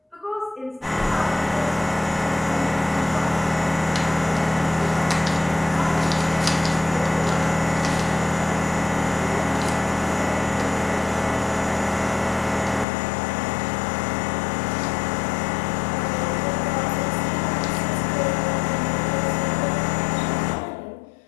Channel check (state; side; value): drops out; right; at 12.9 s